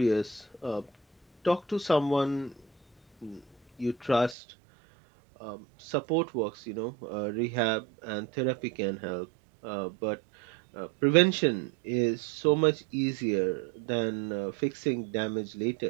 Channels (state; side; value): drops out; left; at 4.4 s